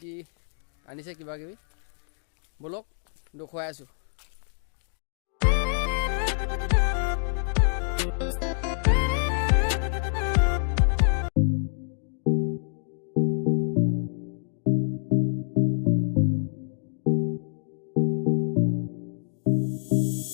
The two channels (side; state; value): right; silent; digital silence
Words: আনিছে কিবা কিবি বলক দেখুৱাই আছোঁ